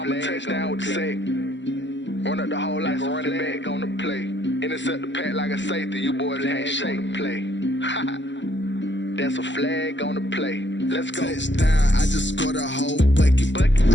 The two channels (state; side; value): late; right; 0.53 ms